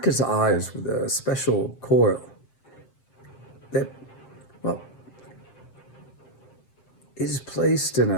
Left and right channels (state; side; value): late; right; 7.6 ms